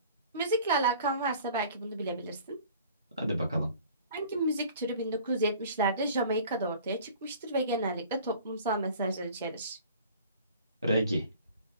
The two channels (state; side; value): inverted; both; correlation -0.47